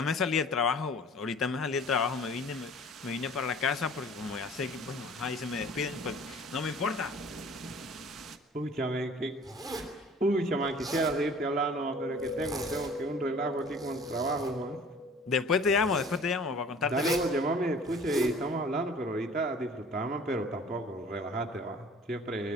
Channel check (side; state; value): both; normal; correlation 0.48